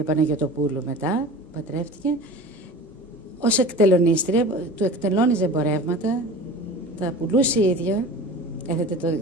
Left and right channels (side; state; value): both; normal; correlation 0.38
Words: Παναγιωτοπούλου μετά, πατρεύτηκε, ως εκτελονίστρια, του εκτελώνιζε εμπορεύματα, τα πουλούσε η ίδια, έθετε